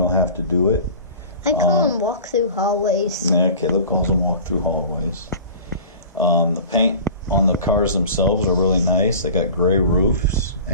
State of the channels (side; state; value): both; inverted; correlation -0.41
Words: have to do it. I call them walk-through hallways. Yeah, Caleb calls them walk-through hallways. The paint on the cars themselves are really nice. They got gray roofs